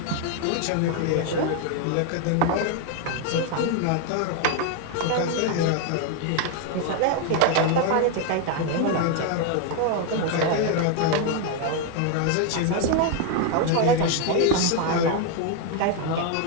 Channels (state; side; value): different; both; correlation 0.01